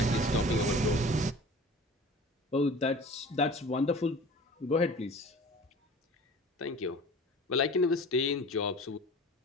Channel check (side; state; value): both; normal; correlation 0.41